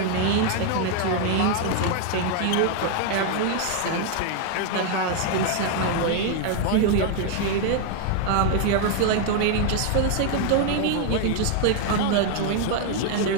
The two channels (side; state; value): both; different; correlation 0.00